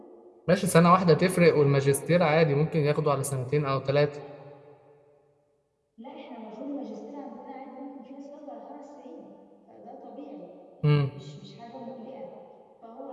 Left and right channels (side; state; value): both; identical; correlation 1.00